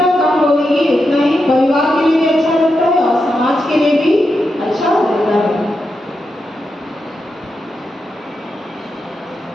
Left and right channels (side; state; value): both; normal; correlation 0.87